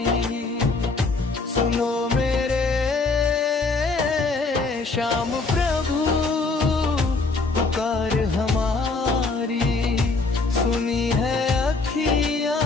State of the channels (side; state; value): right; quieter; 3.8 dB